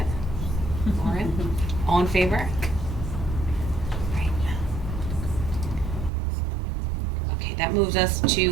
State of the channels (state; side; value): drops out; left; at 6.1 s